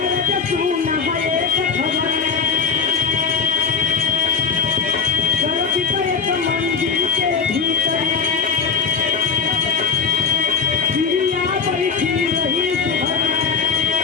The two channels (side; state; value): right; quieter; 5.7 dB